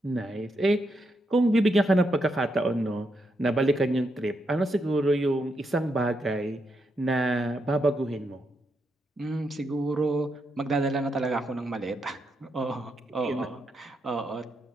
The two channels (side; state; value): both; normal; correlation 0.81